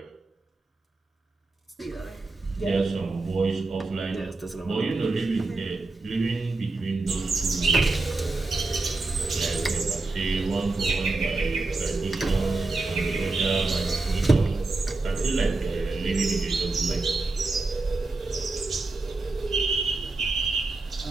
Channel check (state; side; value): quieter; left; 3.4 dB